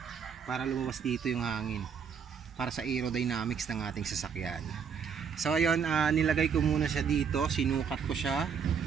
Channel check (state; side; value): quieter; left; 6.8 dB